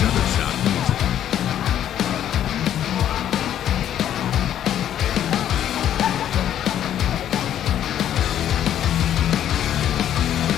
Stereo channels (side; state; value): right; quieter; 10.7 dB